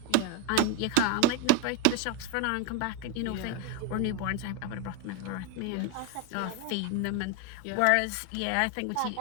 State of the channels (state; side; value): different; both; correlation 0.01